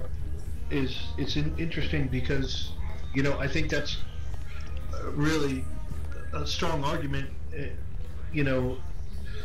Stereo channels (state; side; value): identical; both; correlation 1.00